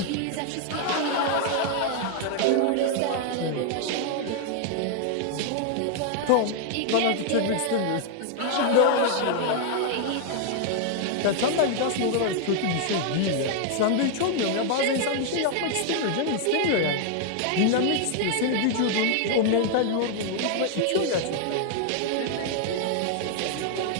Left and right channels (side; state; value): both; different; correlation 0.00